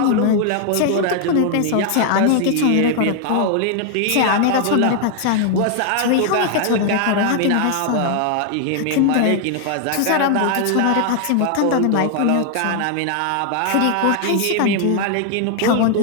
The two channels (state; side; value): different; both; correlation 0.00